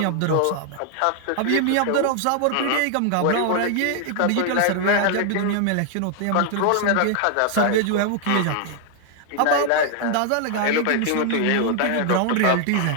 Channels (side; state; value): both; different; correlation 0.00